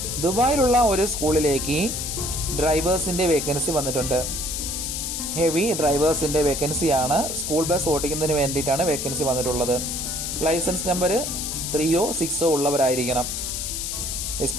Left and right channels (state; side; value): noise; left; hiss, 3 dB below the sound